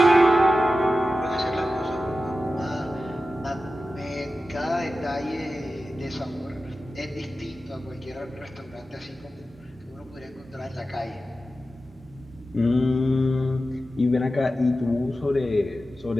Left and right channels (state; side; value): normal; both; correlation 0.93